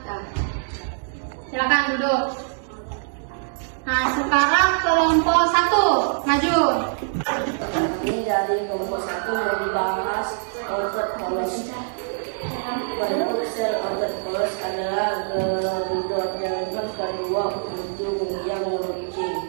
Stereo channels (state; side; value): silent; left; digital silence